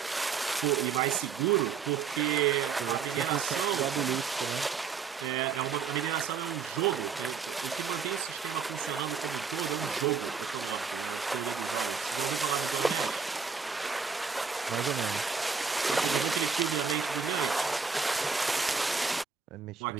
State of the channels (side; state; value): left; quieter; 5.7 dB